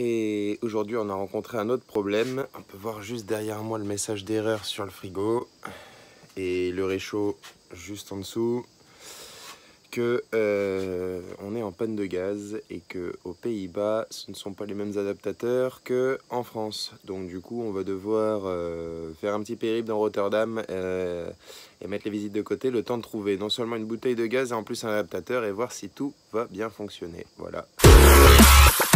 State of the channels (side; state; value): both; identical; correlation 1.00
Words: aujourd'hui on a rencontré un autre problème. On peut voir juste derrière moi le message d'erreur sur le frigo et le réchaud juste en dessous que on est en panne de gaz et que aux Pays-Bas ce ne sont pas les mêmes adaptateurs que en France. Donc du coup on va devoir faire un petit périple dans Rotterdam et mettre les visites de côté, le temps de trouver non seulement une bouteille de gaz et en plus un adaptateur et voir si tout va bien fonctionner. Voilà.